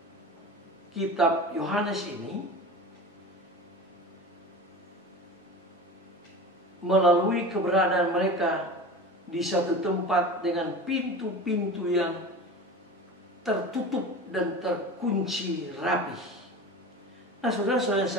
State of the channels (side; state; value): both; normal; correlation 0.32